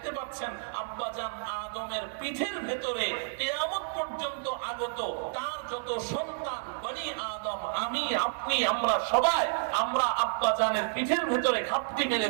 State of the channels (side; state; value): left; silent; digital silence